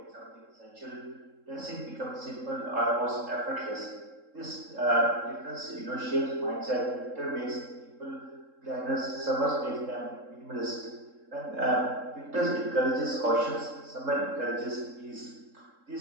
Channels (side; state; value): left; late; 3.7 ms